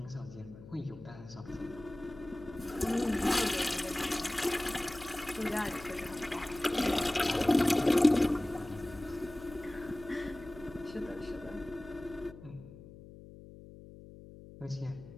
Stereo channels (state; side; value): noise; left; hum, 17 dB below the sound